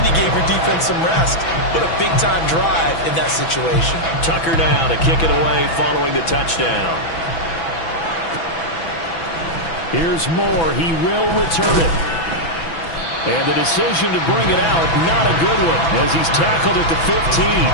you gave your defense some rest. What a big-time drive in that situation. Tucker now to kick it away following the touchdown. Here's Moore. He will return it. And the decision to bring it out, not a good one, as he's tackled at the 15.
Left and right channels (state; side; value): late; right; 6.0 ms